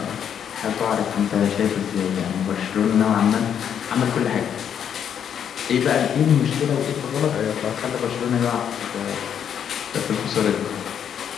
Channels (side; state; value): right; quieter; 8.6 dB